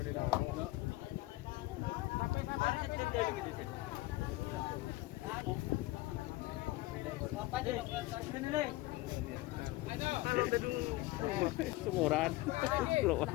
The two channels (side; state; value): right; quieter; 18.8 dB